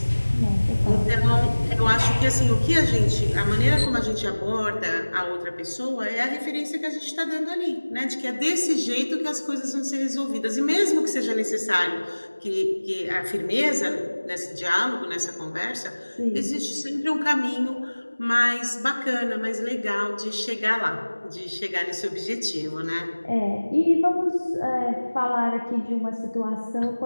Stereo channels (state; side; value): inverted; both; correlation -1.00